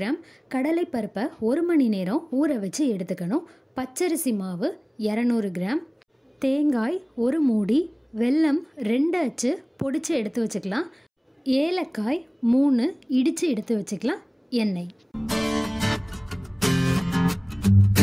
கடலைப்பருப்பை 1 மணி நேரம் ஊற வச்சு எடுத்துக்கணும். பச்சரிசி மாவு 200 கிராம். தேங்காய் 1 மூடி. வெல்லம் 2 அச்சு பொடிச்சு எடுத்து வச்சுக்கலாம். ஏலக்காய் 3 இடித்து எடுத்து வச்சுக்கலாம். எண்ணெய்.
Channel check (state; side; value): identical; both; correlation 1.00